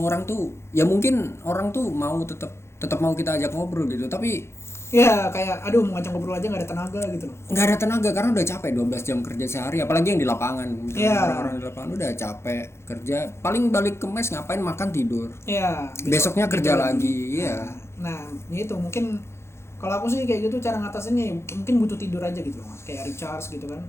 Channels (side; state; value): right; late; 0.13 ms